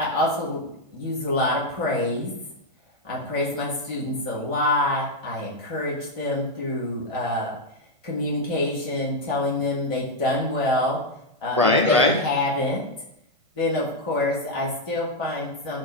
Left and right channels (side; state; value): left; late; 1.5 ms